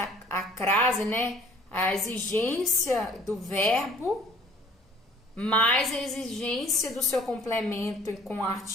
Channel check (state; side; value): normal; both; correlation 0.54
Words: a crase, né? A exigência do verbo mais a exigência do seu complemento com o